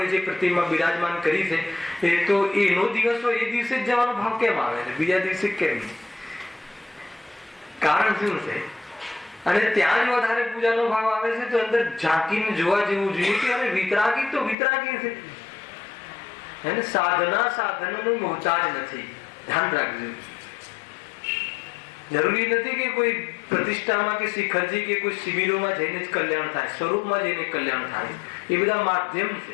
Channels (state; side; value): drops out; right; at 14.6 s